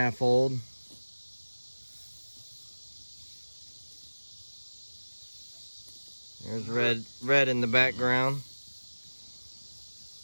old. There's red in the background.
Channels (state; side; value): inverted; both; correlation -1.00